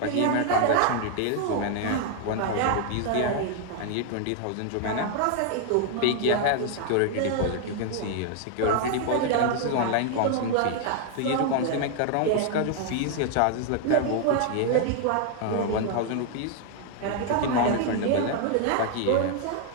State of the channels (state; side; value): different; both; correlation 0.00